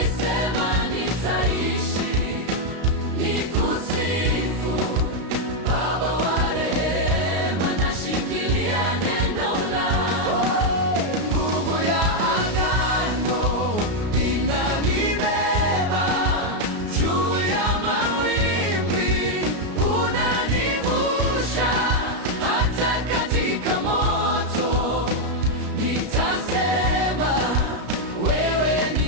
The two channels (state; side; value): late; left; 33 ms